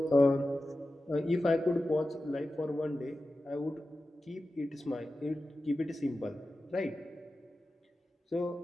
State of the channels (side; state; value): both; normal; correlation 0.93